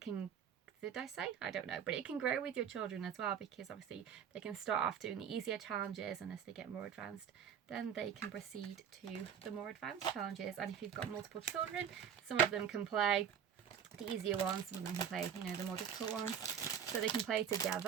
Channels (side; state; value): left; quieter; 8.2 dB